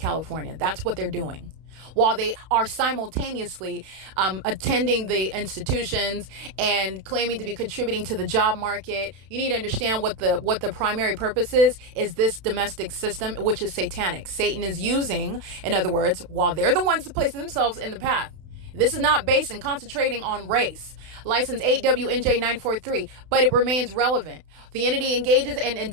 That's what they're doing, while they are simultaneously attending the institutions and claiming to be contributing to the job market. You need to understand what the primary purpose is this domestic system, which is satanic. Satan is using, in other words, while they're the ones that place themselves in the path. This is not based and concentrating on race. License 8WNJ943, but it remains relevant. The entity engages and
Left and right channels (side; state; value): left; late; 32 ms